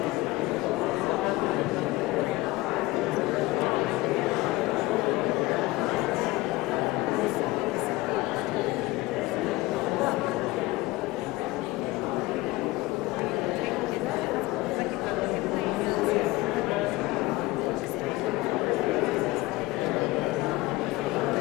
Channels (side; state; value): right; quieter; 20.1 dB